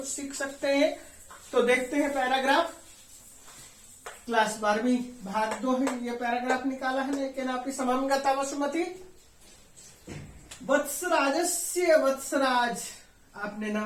सीख सकते हैं। तो देखते हैं पैराग्राफ। क्लास 12वीं भाग 2 है, ये पैराग्राफ निकाला है नैकेनापि समं गता वसुमति। वत्सराजस्य वत्सराज, आपने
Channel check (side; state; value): both; identical; correlation 1.00